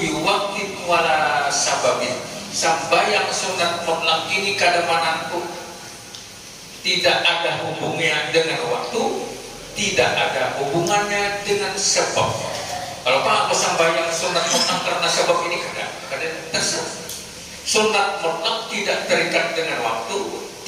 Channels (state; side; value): identical; both; correlation 1.00